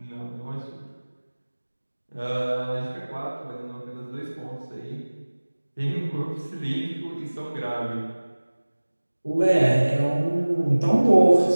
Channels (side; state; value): both; inverted; correlation -1.00